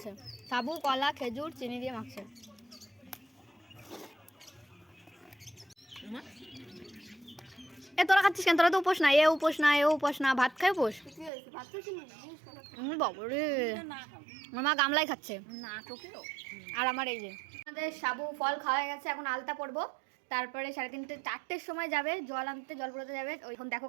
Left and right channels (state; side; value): drops out; left; at 11.3 s